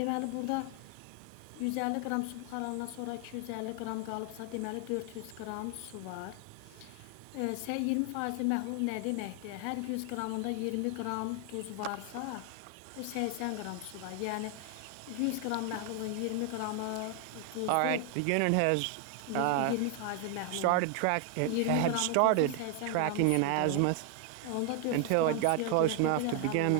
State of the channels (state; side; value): different; both; correlation 0.00